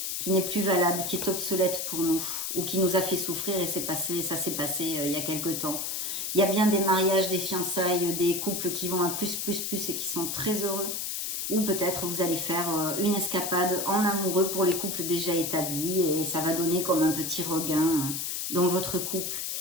qui n'est plus valable, qui est obsolète pour nous, ou qui nous a fait souffrir et ça s'est passé il y a quelque temps. Il y a bien des mariages, des fiançailles, des couples qui vont à plus et qui sont très heureux. Ou peut-être vous allez faire une escapade en amoureux pour les couples déjà établis et ça va donner comme un petit regain dans votre couple.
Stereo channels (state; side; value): noise; left; hiss, 3 dB below the sound